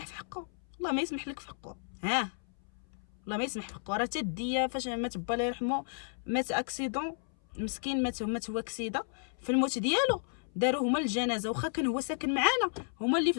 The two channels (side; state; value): right; silent; 56 dB below the other